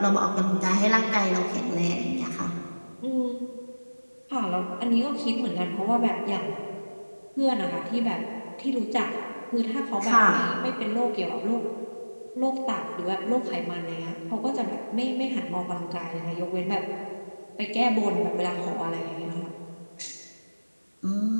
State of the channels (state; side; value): inverted; both; correlation -1.00